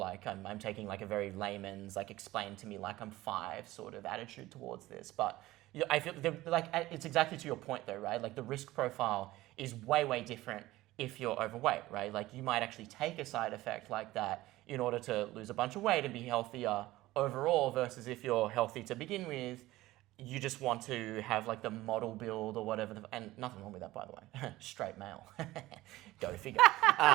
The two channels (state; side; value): quieter; left; 17.3 dB